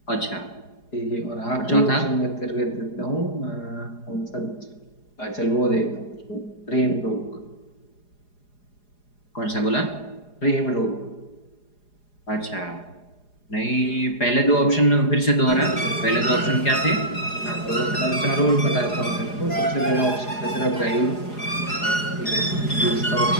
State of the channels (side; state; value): right; late; 4.9 ms